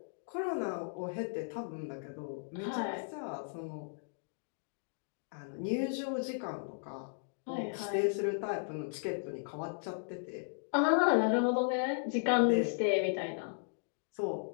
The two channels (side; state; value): right; silent; digital silence